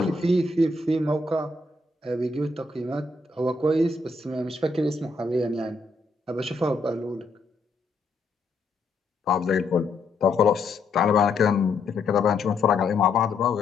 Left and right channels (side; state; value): right; quieter; 3.5 dB